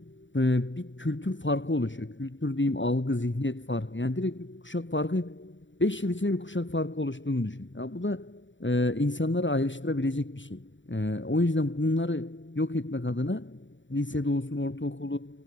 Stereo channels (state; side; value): late; right; 0.55 ms